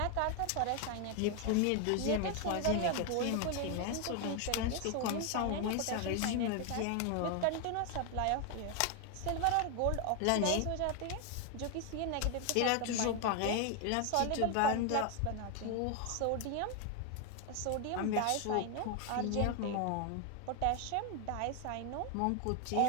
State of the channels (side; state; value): both; different; correlation 0.01